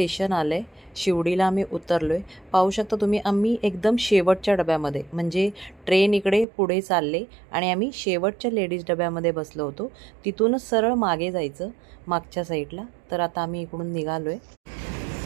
आले। शिवडीला आम्ही उतरलोय। पाहू शकता तुम्ही, आम्ही एकदम शेवटच्या डब्यामध्ये, म्हणजे ट्रेन इकडे पुढे चालले आणि आम्ही शेवटच्या लेडीज डब्यामध्ये बसलो होतो। तिथूनच सरळ मागे जायचं, मागच्या साईडला। तर आता आम्ही इकडून निघालोय।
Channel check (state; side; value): drops out; left; at 6.5 s